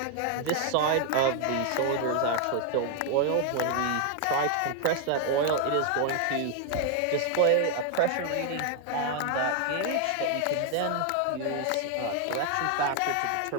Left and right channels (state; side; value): different; both; correlation 0.00